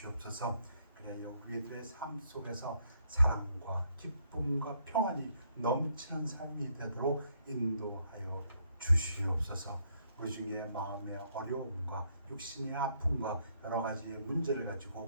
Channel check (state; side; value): inverted; both; correlation -0.72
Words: 그래야 우리들의 삶 속에서 사랑과 기쁨과 평안이 넘치는 삶이 되도록 인도하여 주시옵소서. 우리 중에 마음의 어려움과 육신의 아픔과 여러 가지의 문제를